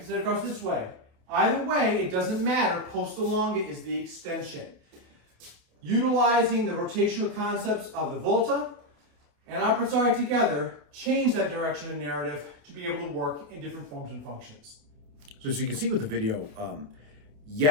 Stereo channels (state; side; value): late; left; 28 ms